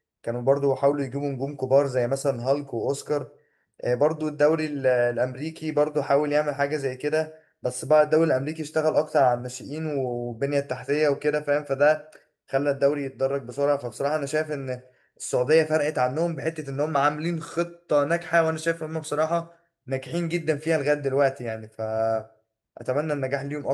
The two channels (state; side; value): identical; both; correlation 1.00